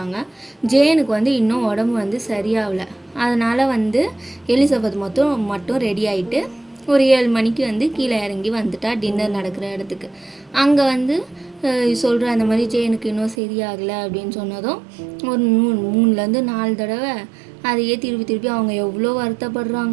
ஜேனுக்கு வந்து இன்னும் உடம்பு வந்து சரியாகலை. அதனால் வந்து எலிசபெத் மட்டும் ரெடி ஆகிட்டு ஒரு 7 மணிக்கு வந்து கீழே இறங்கி வந்துட்டா டின்னர் நடக்கிற இடத்துக்கு. அங்கே வந்து சொல்கிற அந்த மாதிரி ஜேனுக்கு இன்னும் சரியாகலை அப்படின்னு சொன்னதும் ஒரு 3-4 தடவை அதையே திருப்பி அவங்க எவ்வளோ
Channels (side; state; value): left; drops out; at 13.4 s